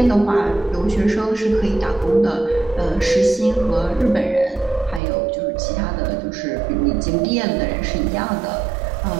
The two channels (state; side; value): drops out; left; at 5.0 s